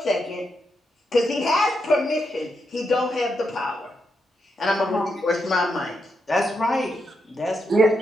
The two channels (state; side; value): normal; both; correlation 0.83